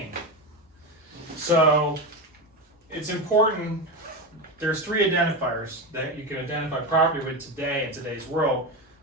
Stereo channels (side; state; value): both; normal; correlation 0.17